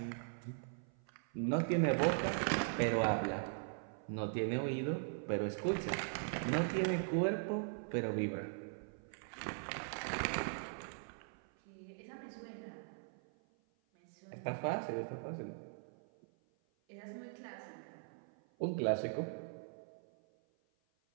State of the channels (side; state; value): left; silent; 51 dB below the other